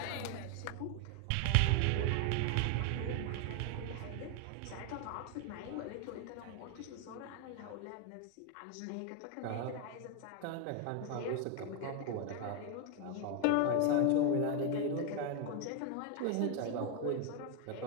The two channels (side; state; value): both; different; correlation 0.01